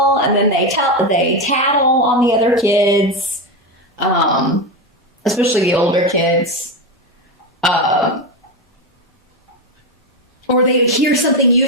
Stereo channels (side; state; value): both; normal; correlation 0.13